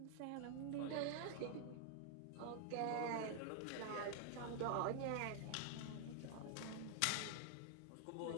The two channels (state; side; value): different; both; correlation 0.00